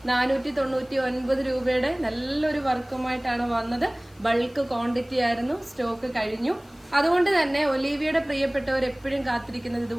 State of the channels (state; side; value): noise; left; hiss, 30 dB below the sound